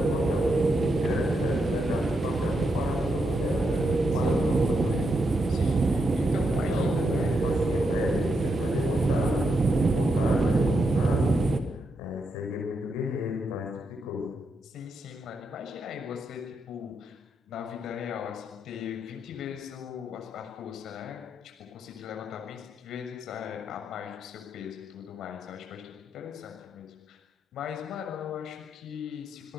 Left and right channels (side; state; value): both; normal; correlation 0.82